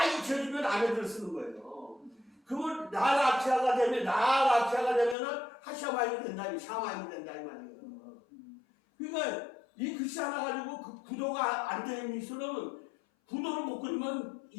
잊혀지면 아래들을 쓰는 거예요. 그러면 나라키아가 되면은 하샤마임이 된다, 샤마임이 된다 이 말이에요. 그러니까 이 글씨 하나 가지고 그 구도가 안 되는 미술은 구도를 못 그리면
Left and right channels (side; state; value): right; drops out; at 5.2 s